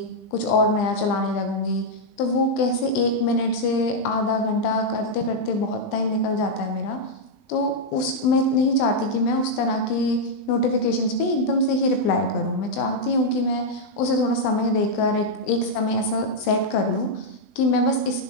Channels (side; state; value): right; late; 20 ms